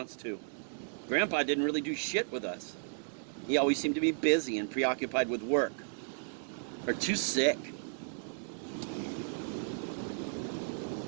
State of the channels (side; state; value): left; silent; digital silence